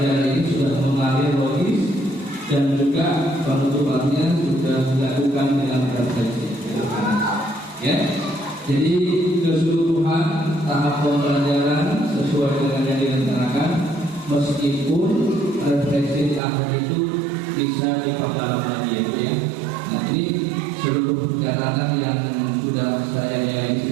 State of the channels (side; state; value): left; drops out; at 16.4 s